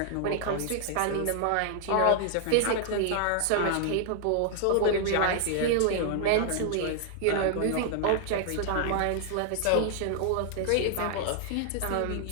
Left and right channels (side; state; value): both; different; correlation 0.00